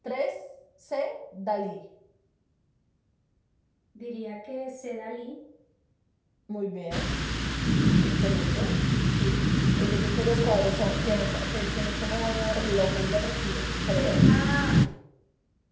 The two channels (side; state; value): both; identical; correlation 1.00